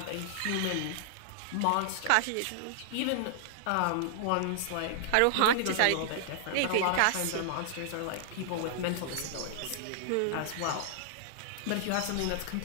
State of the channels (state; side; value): different; both; correlation -0.01